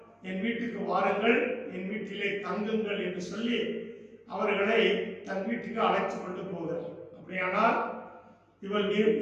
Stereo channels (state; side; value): identical; both; correlation 1.00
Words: என் வீட்டுக்கு வாருங்கள், என் வீட்டிலே தங்குங்கள் என்று சொல்லி அவர்களை தன் வீட்டுக்கு அழைத்து கொண்டு போகிறார். அப்படியானால்